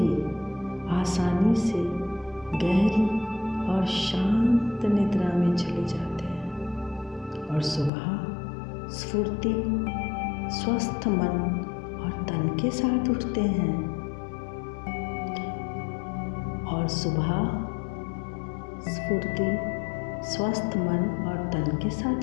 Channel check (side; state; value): right; drops out; at 7.9 s